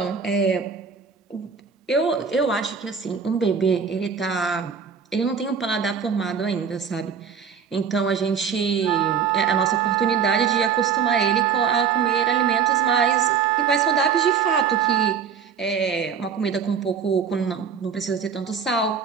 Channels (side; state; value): left; quieter; 6.7 dB